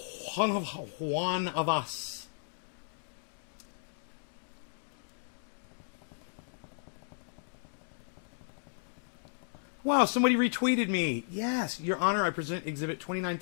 One of us. Wow, somebody retweeted me. Yes, Your Honor, I present Exhibit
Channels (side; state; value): right; silent; digital silence